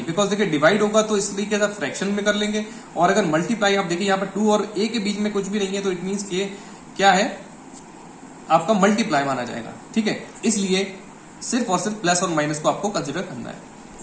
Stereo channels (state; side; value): identical; both; correlation 1.00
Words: बिकॉज देखिए डिवाइड होगा तो इस तरीके से फ्रैक्शन में कर लेंगे, और अगर मल्टीप्लाई आप देखिए यहाँ पर 2 और a के बीच में कुछ भी नहीं है तो इट मीन्स के क्या है, आपका मल्टीप्लाई माना जाएगा, ठीक है। इसलिए सिर्फ और सिर्फ प्लस और माइनस को आपको कंसिडर करना है,